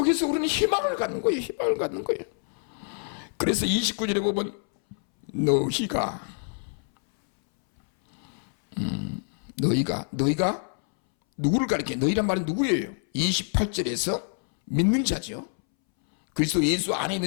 우리는 희망을 갖는 거예요. 희망을 갖는 거예요. 그래서 29절에 보면 너희가 누구를 가리켜? 너희란 말은 누구예요? 28절에서 믿는 자죠. 그리스도 예수 안에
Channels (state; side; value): silent; right; 61 dB below the other